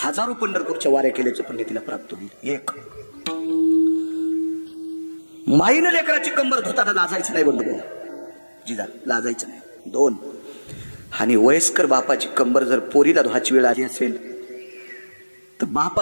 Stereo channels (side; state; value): both; inverted; correlation -1.00